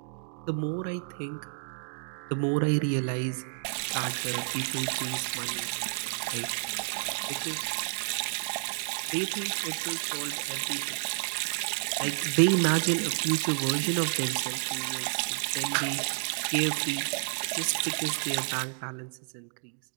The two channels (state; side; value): silent; left; digital silence